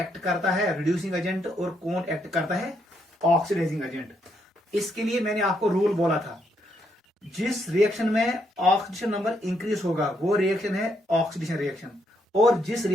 करता है रिड्यूसिंग एजेंट और कौन एक्ट करता है ऑक्सीडाइजिंग एजेंट। इसके लिए मैंने आपको रूल बोला था, जिस रिएक्शन में ऑक्सीडेशन नंबर इंक्रीज होगा वो रिएक्शन है ऑक्सीडेशन रिएक्शन, और जिस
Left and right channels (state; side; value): normal; both; correlation 0.75